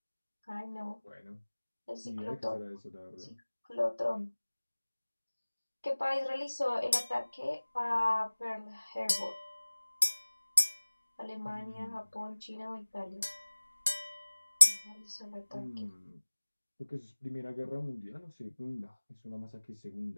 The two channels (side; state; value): both; inverted; correlation -1.00